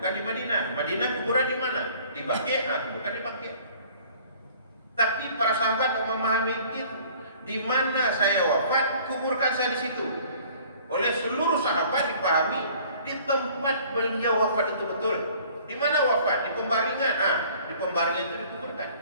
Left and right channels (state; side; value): inverted; both; correlation -0.53